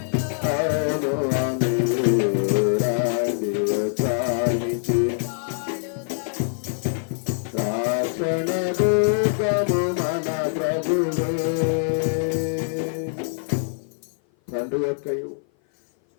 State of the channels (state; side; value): silent; right; 57 dB below the other